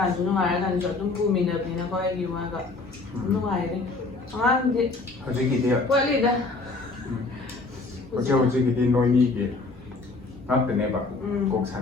tu nungai kan so dum bumi na pina ko ay giwaga. Nungai rin. Ang di. Haji kita. Wali dah. Haji kita noini ke. Apa ni ba? Kok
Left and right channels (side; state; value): right; quieter; 3.6 dB